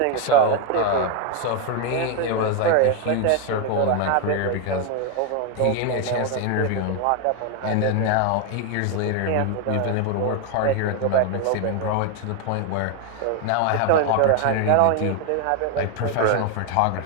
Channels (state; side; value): different; both; correlation 0.01